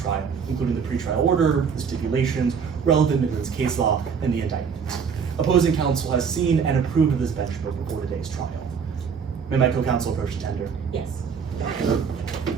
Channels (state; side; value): quieter; left; 6.4 dB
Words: including the pretrial order, the stipulations, relevant Midlands case law, and the indictment. Opposing counsel has seen and approved of this bench book before today's trial. May my co-counsel approach the tender? Yes. Thank